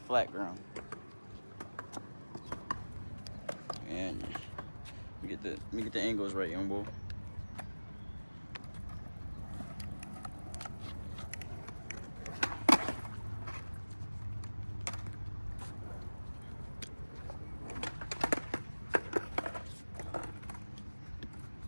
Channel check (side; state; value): both; inverted; correlation -1.00